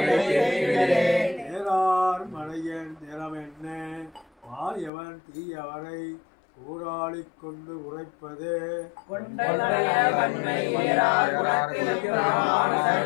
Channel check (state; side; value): drops out; right; at 4.9 s